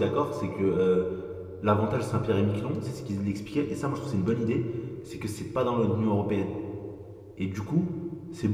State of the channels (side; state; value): both; identical; correlation 1.00